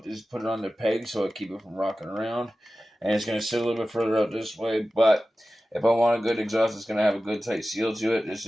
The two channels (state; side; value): normal; both; correlation 0.95